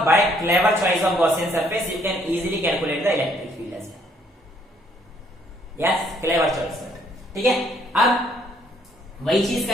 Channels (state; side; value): normal; both; correlation 0.66